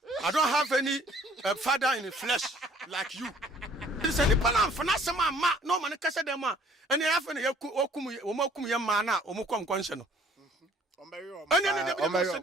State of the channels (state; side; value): normal; both; correlation 0.57